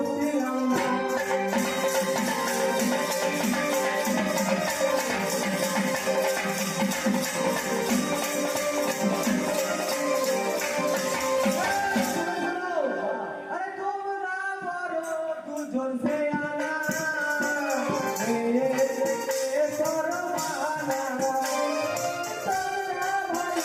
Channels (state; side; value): identical; both; correlation 1.00